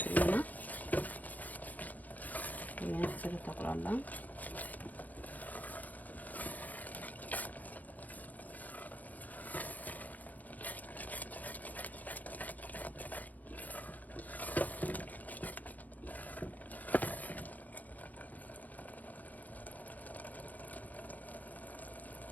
ትሪና ይሄን ተሰለታቁላላ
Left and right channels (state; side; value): late; right; 0.080 ms